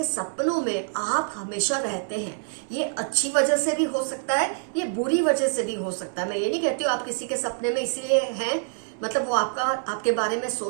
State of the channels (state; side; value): silent; left; 61 dB below the other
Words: सपनों में आप हमेशा रहते हैं। ये अच्छी वजह से भी हो सकता है, ये बुरी वजह से भी हो सकता है। मैं ये नहीं कहती हूँ आप किसी के सपने में इसलिए हैं, मतलब वो आपके बारे में